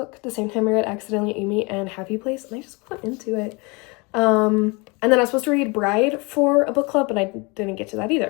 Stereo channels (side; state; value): right; quieter; 28.2 dB